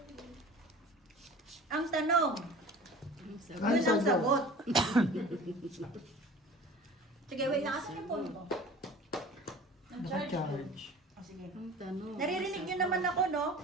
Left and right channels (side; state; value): both; normal; correlation 0.42